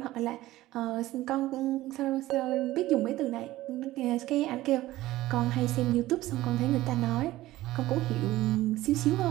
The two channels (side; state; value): left; quieter; 16.4 dB